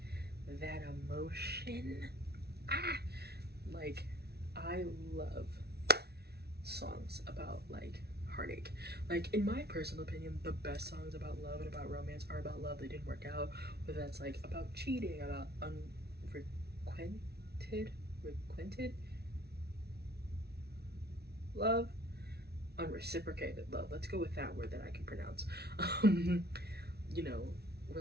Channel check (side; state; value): left; late; 0.47 ms